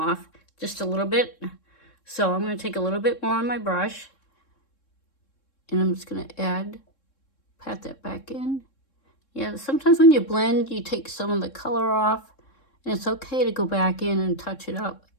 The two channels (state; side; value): late; right; 3.7 ms